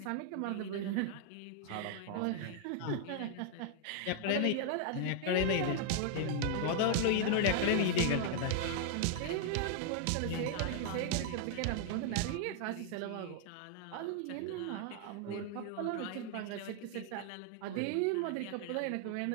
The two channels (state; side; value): different; both; correlation 0.00